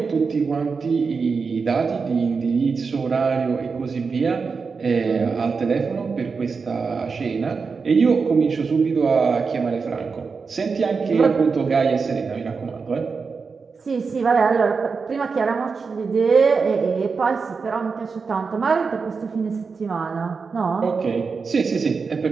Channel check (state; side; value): quieter; left; 5.0 dB